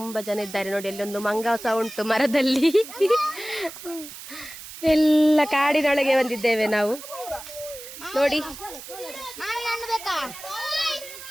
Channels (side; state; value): right; noise; hiss, 13 dB below the sound